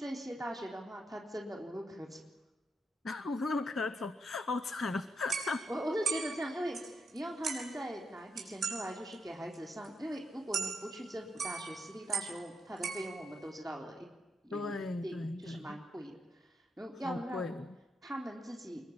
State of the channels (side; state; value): both; normal; correlation 0.81